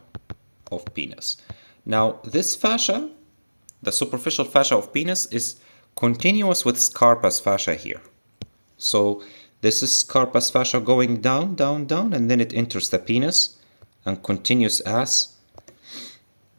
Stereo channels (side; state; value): both; inverted; correlation -1.00